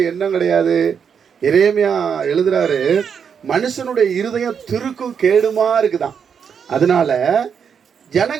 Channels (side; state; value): left; quieter; 7.1 dB